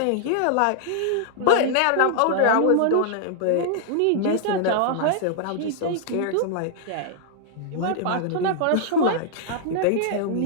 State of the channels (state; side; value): different; both; correlation -0.01